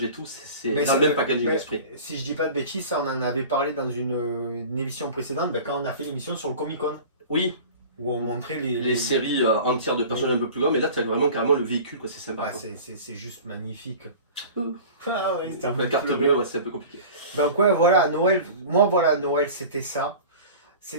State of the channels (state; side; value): inverted; both; correlation -0.39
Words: et tout. C'est Mais dans le même packaging d'esprit. Si je dis pas de bêtises, ça, on en avait parlé dans une émission précédente, quand on a fait l'émission sur le Comic Con, Oui, où on montrait les séries entières de personnages un peu plus grands, mais là tu as vraiment carrément le véhicule, quoi. C'est sympa. Ouais, Quoi. c'est juste magnifique. Ouh. Ah ouais, c'était un La peu carte plus bleue, beau. ouais, c'est un peu compliqué. Donc ouais, voilà, Noël, moi voilà, Noël c'était ça.